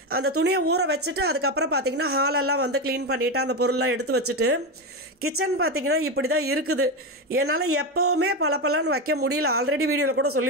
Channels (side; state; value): both; normal; correlation 0.14